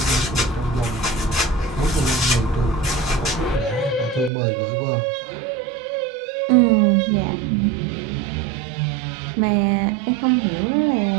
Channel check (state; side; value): drops out; left; at 4.3 s